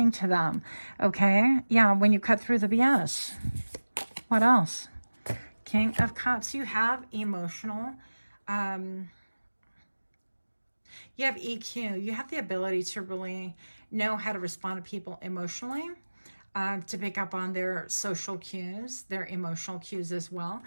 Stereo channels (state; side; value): inverted; both; correlation -1.00